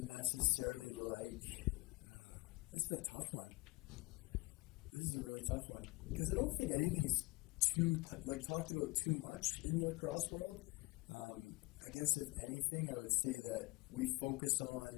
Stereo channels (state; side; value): quieter; right; 22.9 dB